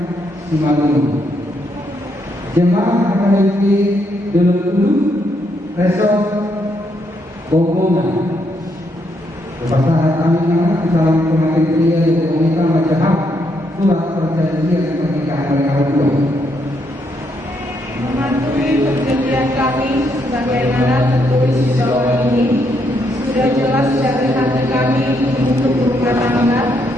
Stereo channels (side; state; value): both; normal; correlation 0.76